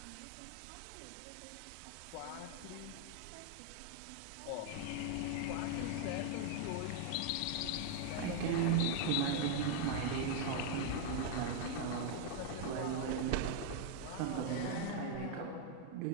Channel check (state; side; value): different; both; correlation 0.00